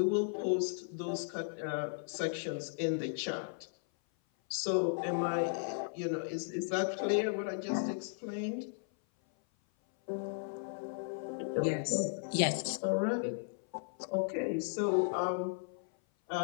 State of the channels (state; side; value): silent; right; 54 dB below the other